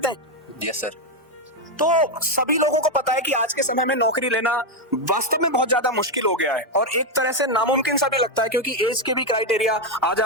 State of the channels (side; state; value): both; normal; correlation 0.05